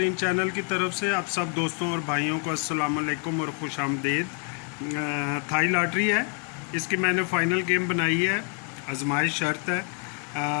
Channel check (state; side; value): quieter; right; 38.1 dB